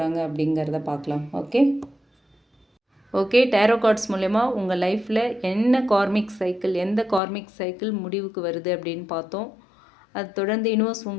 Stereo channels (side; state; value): right; drops out; at 7.2 s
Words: அப்படிங்கிறத பார்க்கலாம். ஓகே, டேரோ கார்ட்ஸ் மூலயமா உங்கள் லைஃப்பில் என்ன கார்மிக் சைக்கிள், எந்த கார்மிக் சைக்கிள் முடிவுக்கு வருது அப்படின்னு பார்த்தோம். அது தொடர்ந்து யூனிவர்ஸ்